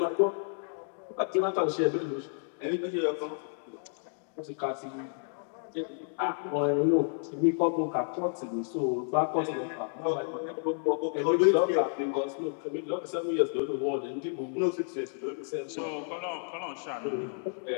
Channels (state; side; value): silent; right; digital silence